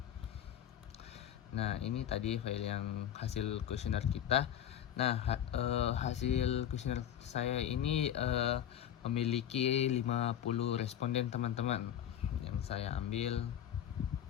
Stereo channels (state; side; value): quieter; right; 10.4 dB